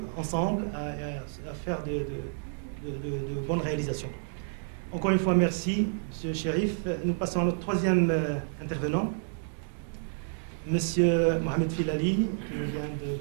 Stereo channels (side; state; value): left; silent; 58 dB below the other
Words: ensemble, à faire de bonnes réalisations. Encore une fois, merci, M. Chérif. Nous passons à notre troisième intervenant. Monsieur Mohamed Filali, qui nous vient de